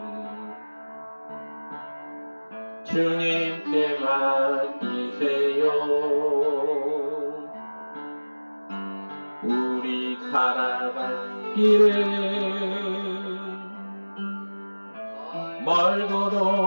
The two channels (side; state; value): both; inverted; correlation -1.00